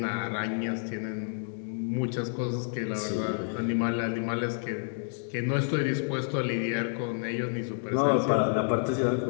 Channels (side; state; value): right; silent; digital silence